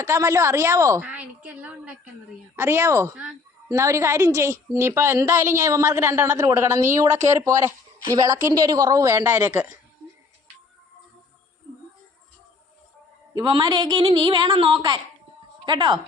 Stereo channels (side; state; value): right; quieter; 4.1 dB